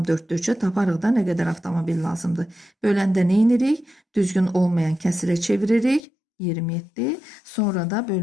taparıq da nə qədər avtomobil lazımdır. Böləndə nə edirik? Düzgün olmayan kəsirə çeviririk. 27. Sonra da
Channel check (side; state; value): right; drops out; at 6.0 s